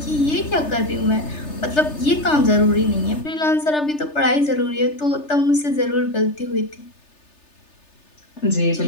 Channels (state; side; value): late; right; 3.3 ms